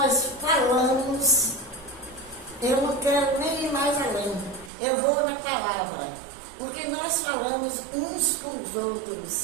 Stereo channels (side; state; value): left; drops out; at 4.7 s